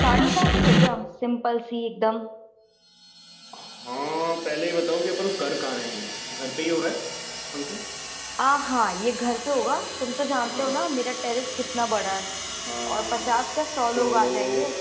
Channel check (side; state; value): both; identical; correlation 1.00